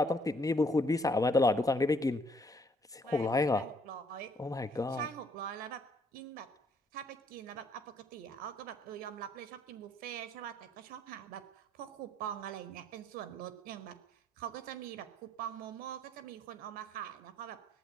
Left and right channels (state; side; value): normal; both; correlation 0.66